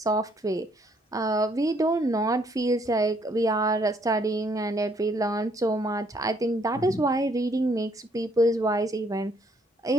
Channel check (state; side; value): normal; both; correlation 0.68